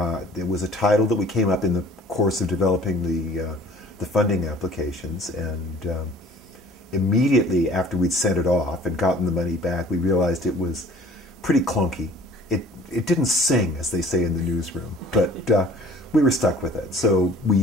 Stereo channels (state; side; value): normal; both; correlation 0.51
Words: it was a title that we came up in the course of developing the funding applications, and immediately after we'd sent it off and gotten the money back, we realized it was pretty clunky. It didn't sing, as they say in the newsroom, but we were stuck with it. So we